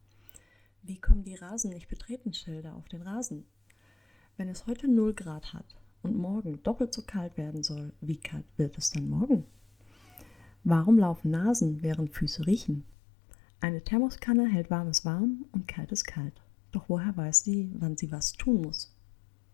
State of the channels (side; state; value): right; drops out; at 12.9 s